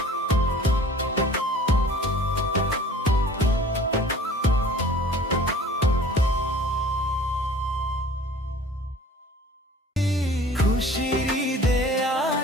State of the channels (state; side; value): normal; both; correlation 0.47